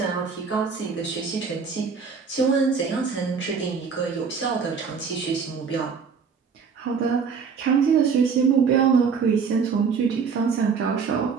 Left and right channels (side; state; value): left; quieter; 5.8 dB